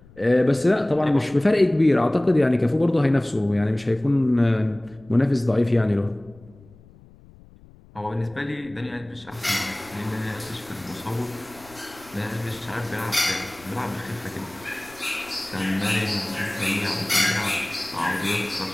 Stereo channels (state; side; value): noise; left; rumble, 24 dB below the sound